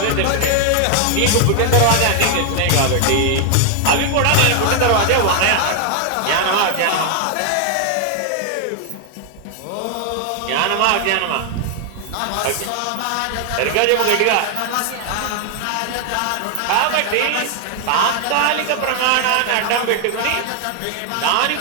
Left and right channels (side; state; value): both; different; correlation 0.00